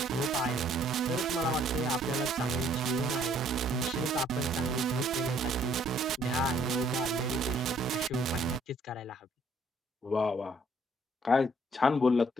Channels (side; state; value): both; normal; correlation 0.63